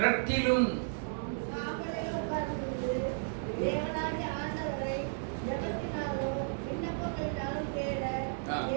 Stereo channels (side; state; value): left; silent; digital silence